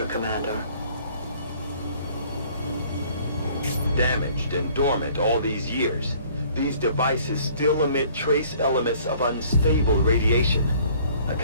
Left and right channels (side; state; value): both; inverted; correlation -0.56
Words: Commander. Damaged and dormant all these years, these devices still emit trace elements of unstable radiation. I